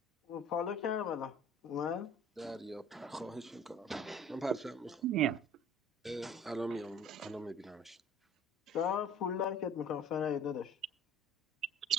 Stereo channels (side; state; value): both; normal; correlation 0.47